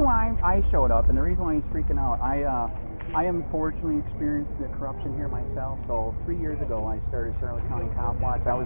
why I showed up and the reason why he's freaking out, I unfortunately experienced the corruption here myself. So 3 years ago, I started Charlotte County COPWATCH. I was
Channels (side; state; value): both; inverted; correlation -1.00